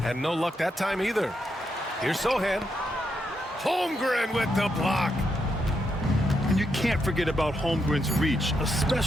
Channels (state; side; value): normal; both; correlation 0.81